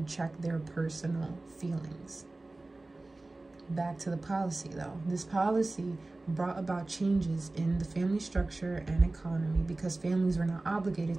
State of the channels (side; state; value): left; quieter; 3.0 dB